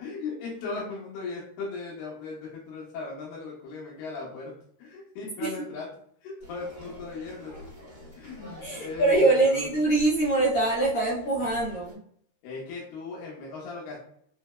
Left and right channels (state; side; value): late; right; 13 ms